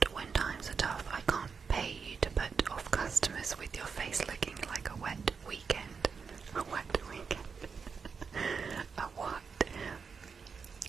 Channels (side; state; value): left; quieter; 5.6 dB